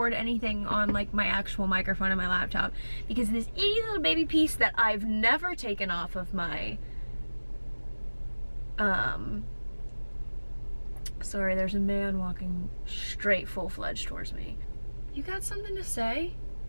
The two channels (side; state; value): both; inverted; correlation -1.00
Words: anything on like my actual microphone on my laptop because this itty little baby piece that I've never taken off of my sorry, there's a man walking straight full-fledged towards me. You got something to say?